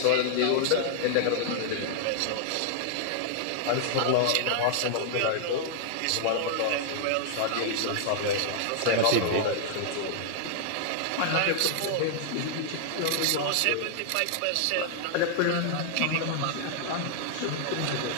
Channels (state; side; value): different; both; correlation -0.01